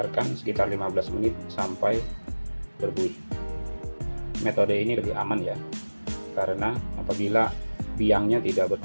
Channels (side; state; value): both; inverted; correlation -1.00